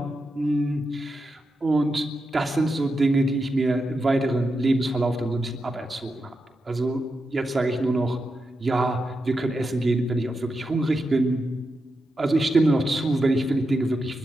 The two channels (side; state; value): both; normal; correlation 0.87